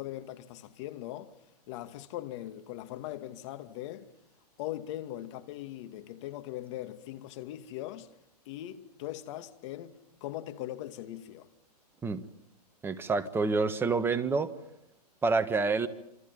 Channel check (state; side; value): normal; both; correlation 0.53